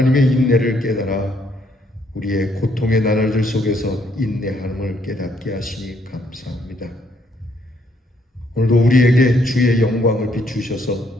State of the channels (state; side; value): normal; both; correlation 0.70